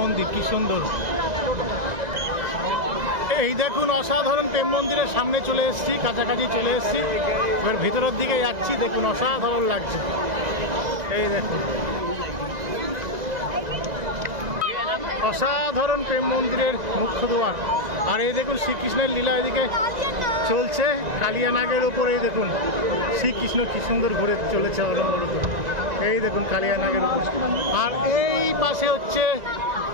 মন্দির কি সুন্দর। এই দেখুন অসাধারণ প্রেম মন্দিরের সামনে চলে এসেছি, কাছাকাছি চলে এসেছি। এবার ভিতরের দিকে যাচ্ছি। দেখুন অসাধারণ লাগছে। এই দেখুন অসাধারণ প্রেম মন্দিরের মুখ্য দ্বার। আর এই দেখুন শ্রীকৃষ্ণের লীলা এদিকে চলছে কালিয়া নাগের উপরে। এই দেখুন শ্রীকৃষ্ণ কি সুন্দর ঘুরে চলেছে অনবরত। এই দেখুন কালিয়া নাগের উপর। আর এই পাশে হচ্ছে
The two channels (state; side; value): late; left; 1.9 ms